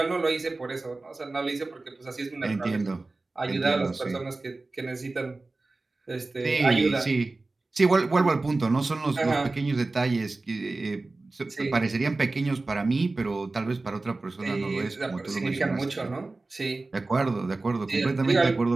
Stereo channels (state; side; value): quieter; left; 3.3 dB